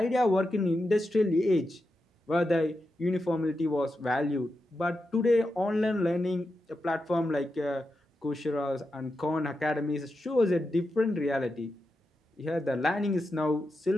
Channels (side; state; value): both; normal; correlation 0.88